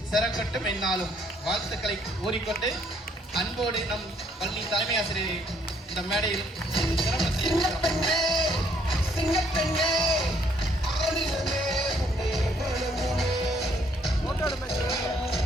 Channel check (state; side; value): normal; both; correlation 0.66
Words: சிறக்கட்டும் என்னாலும் வாழ்த்துக்களை கூறிக்கொண்டு அன்போடு நம் பள்ளி தலைமை ஆசிரியரை இந்த மேடையில்